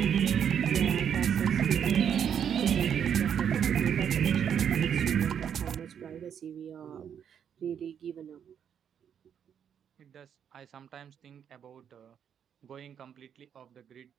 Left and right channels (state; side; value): quieter; left; 8.3 dB